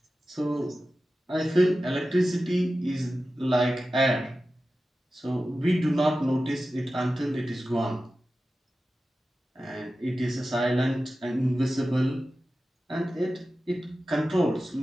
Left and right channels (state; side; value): normal; both; correlation 0.94